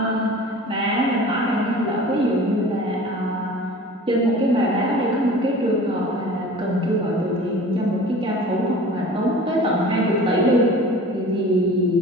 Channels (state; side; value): normal; both; correlation 0.41